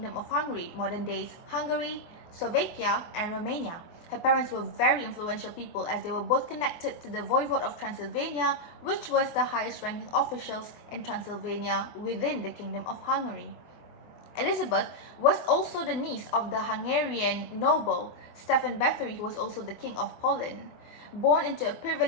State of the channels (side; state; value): right; late; 24 ms